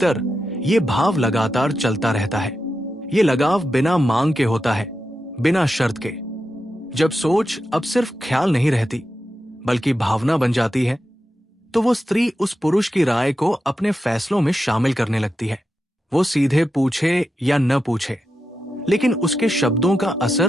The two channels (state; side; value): normal; both; correlation 0.89